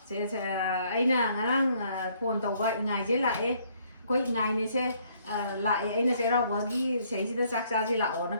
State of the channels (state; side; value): inverted; both; correlation -0.66